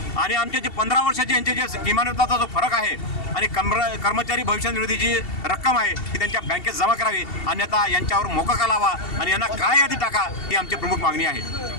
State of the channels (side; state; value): right; late; 2.7 ms